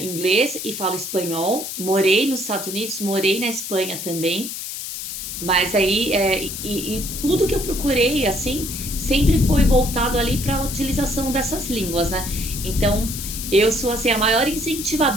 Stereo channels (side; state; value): left; noise; hiss, 7 dB below the sound